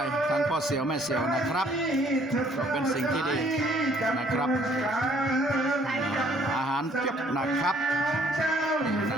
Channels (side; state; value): both; normal; correlation 0.62